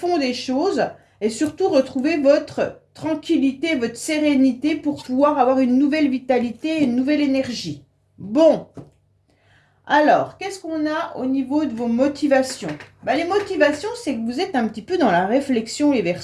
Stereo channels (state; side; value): identical; both; correlation 1.00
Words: des choses. et surtout retrouver votre tranquillité, votre sérénité pour pouvoir avoir une nouvelle vitalité, une nouvelle énergie. Bon, alors, qu'est-ce qu'on a au niveau de vos motivations? Les motivations, c'est que vous êtes un petit peu dans la réflexion, les